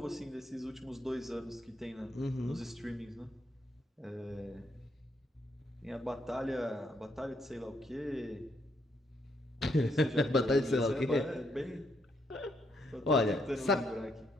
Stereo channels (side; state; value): both; normal; correlation 0.75